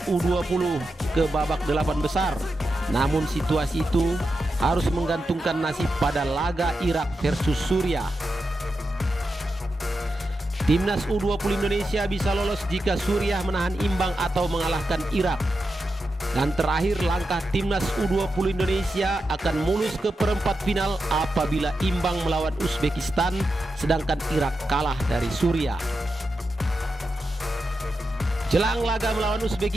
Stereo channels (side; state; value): both; normal; correlation 0.88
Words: U20 ke babak 8 besar. Namun situasi itu harus menggantungkan nasib pada laga Irak versus Suriah. Timnas U20 Indonesia bisa lolos jika Suriah menahan imbang atau mengalahkan Irak. Dan terakhir, langkah Timnas U20 Indonesia akan mulus ke perempat final apabila imbang melawan Uzbekistan, sedangkan Irak kalah dari Suriah. Jelang laga melawan